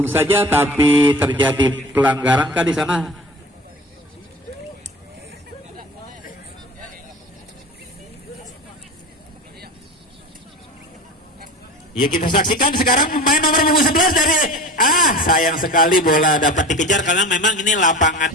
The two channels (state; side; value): normal; both; correlation 0.35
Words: saja, tapi terjadi pelanggaran kah di sana? Ya, kita saksikan sekarang pemain nomor punggung 11 dari sayang sekali bola dapat dikejar karena memang ini lapangan.